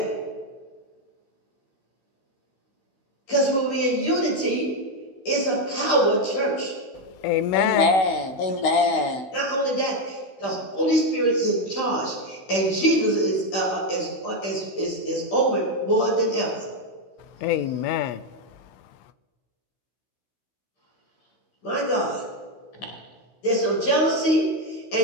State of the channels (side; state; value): right; late; 16 ms